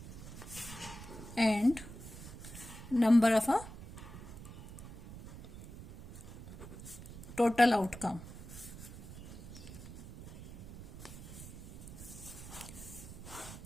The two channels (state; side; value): noise; right; rumble, 12 dB below the sound